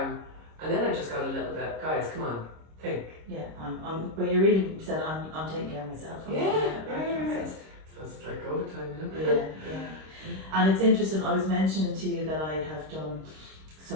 and then I just got a little bit, guys, come on, think. Yeah, but you really said, I'm taking care of myself. Yeah. I suppose it's like COVID time, you know? Yeah. And it's interesting, I was mentioning to you that I have done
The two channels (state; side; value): late; left; 26 ms